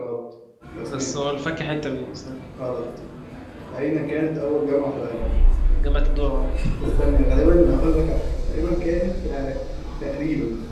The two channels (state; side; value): identical; both; correlation 1.00